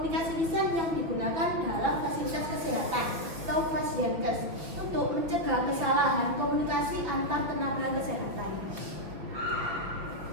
lisan yang digunakan dalam fasilitas kesehatan atau Pasienkes untuk mencegah kesalahan komunikasi antar tenaga kesehatan.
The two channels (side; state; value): left; late; 5.8 ms